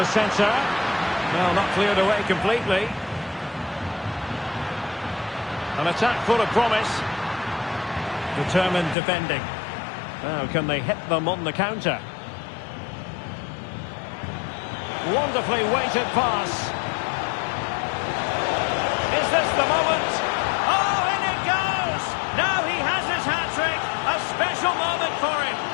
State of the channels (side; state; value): right; drops out; at 9.0 s